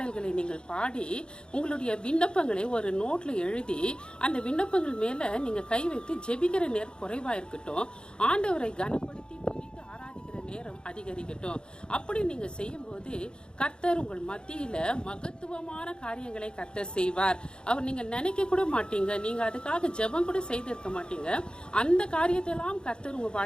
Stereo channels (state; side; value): late; right; 0.050 ms